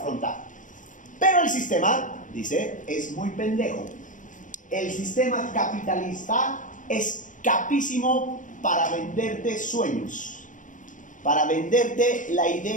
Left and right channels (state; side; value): late; right; 0.37 ms